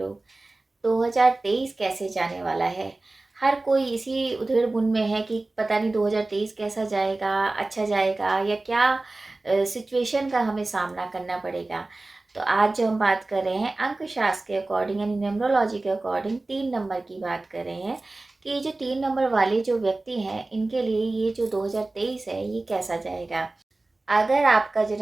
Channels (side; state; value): left; quieter; 3.1 dB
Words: 2023 कैसे जाने वाला है। हर कोई इसी उधेड़-बुन में है कि पता नहीं 2023 कैसा जाएगा, अच्छा जाएगा या क्या सिचुएशन का हमें सामना करना पड़ेगा। तो आज जो हम बात कर रहे हैं अंकशास्त्र के अकॉर्डिंग यानी न्यूमरोलॉजी के अकॉर्डिंग 3 नंबर की बात कर रहे हैं कि जो 3 नंबर वाले जो व्यक्ति हैं इनके लिए ये जो 2023 है ये कैसा जाएगा। अगर आपका